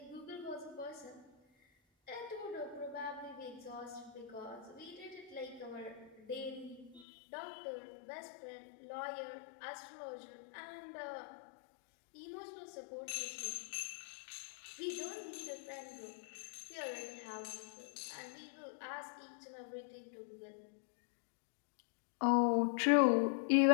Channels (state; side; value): drops out; right; at 7.1 s